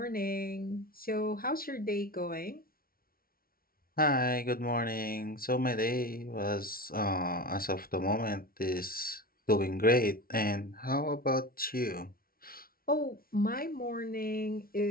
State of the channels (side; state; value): right; late; 0.43 ms